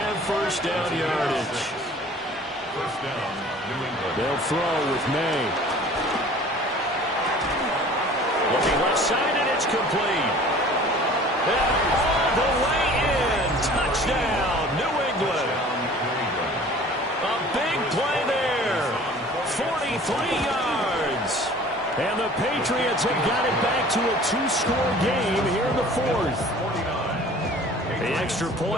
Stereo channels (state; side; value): normal; both; correlation 0.47